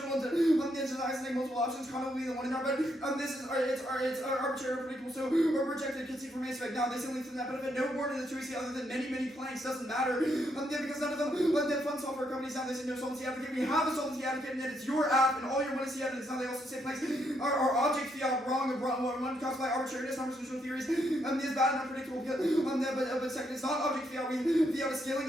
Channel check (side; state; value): both; normal; correlation 0.76